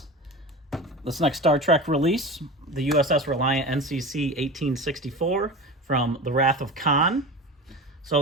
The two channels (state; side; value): normal; both; correlation 0.30